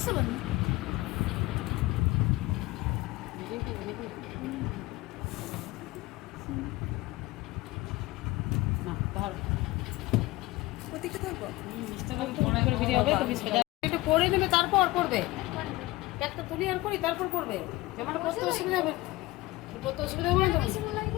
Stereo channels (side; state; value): right; quieter; 19.6 dB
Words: बन একটু করে নেবে তারপর করবে একটা তুলি আর করি তারপর করবে যেমন করতে অসুবিধা হবে করতে অসুবিধা হবে না